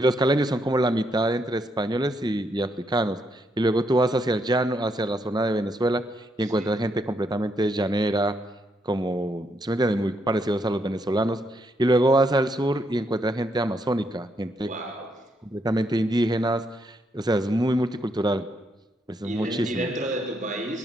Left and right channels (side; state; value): both; normal; correlation 0.77